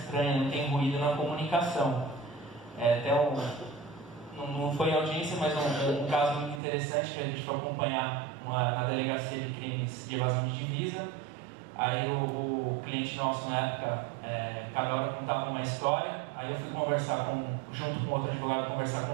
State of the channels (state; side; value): drops out; left; at 6.6 s